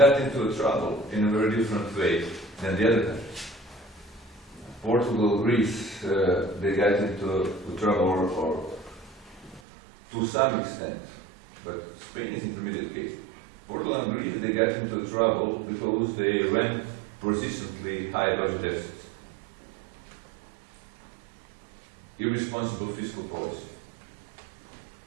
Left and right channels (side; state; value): left; drops out; at 9.6 s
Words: into trouble in a very different way than the other countries. Portugal, Greece, they got into trouble, or to some extent, but Spain is intermediate case. Portugal and Greece, they got into trouble because they ran persistently high budget deficits, irresponsible fiscal policy,